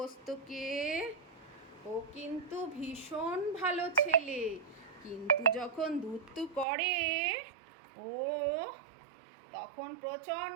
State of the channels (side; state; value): left; drops out; at 6.7 s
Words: ও কিন্তু ভীষণ ভালো ছেলে, কিন্তু যখন ধুতু করে ও তখন